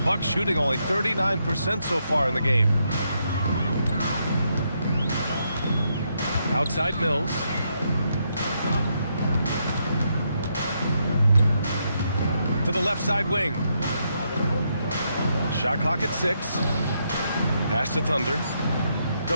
Bucks shooting only 39% so far in the game. Outside Mills. To the left side wing. Shot clock at 6. Pass to Thunder.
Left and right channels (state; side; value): inverted; both; correlation -0.79